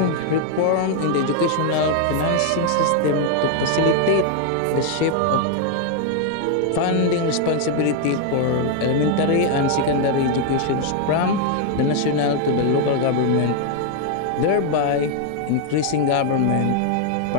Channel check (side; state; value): both; different; correlation 0.00